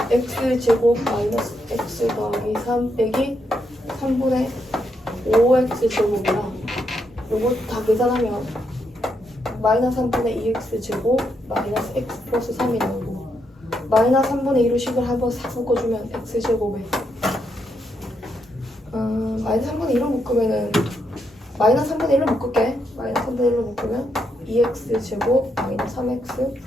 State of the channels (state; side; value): normal; both; correlation 0.79